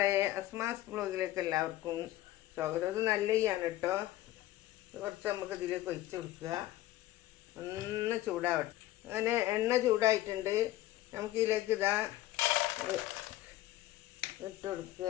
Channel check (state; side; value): quieter; right; 15.6 dB